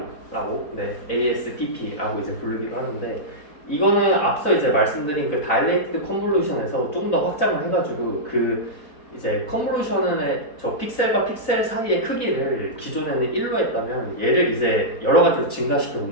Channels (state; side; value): late; right; 4.3 ms